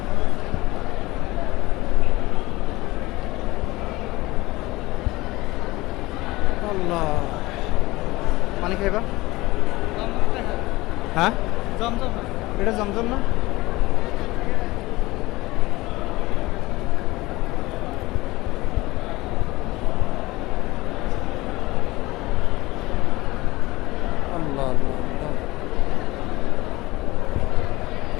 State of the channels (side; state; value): right; quieter; 20.0 dB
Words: আল্লাহ, পানি খাইবা? হ্যাঁ, এটা জমজম না? আল্লাহ আল্লাহ আল্লাহ।